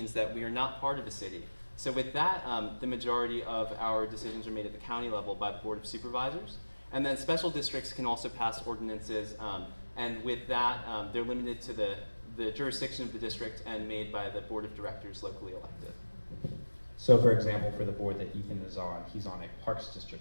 that we are not part of a city. So with that, the majority of our decisions are made at the county level by the Board of Supervisors. And then special districts can also pass ordinances, and with that, they're limited to the jurisdiction of the district and made by the Board of Directors locally elected. So for example, for the board that Ethan is on, he's on a Parks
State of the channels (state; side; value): inverted; both; correlation -1.00